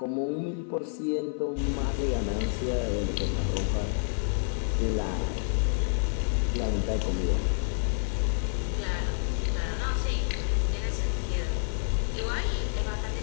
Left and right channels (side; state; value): right; silent; 59 dB below the other